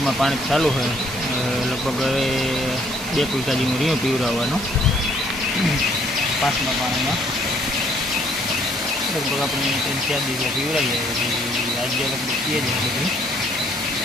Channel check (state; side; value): normal; both; correlation 0.64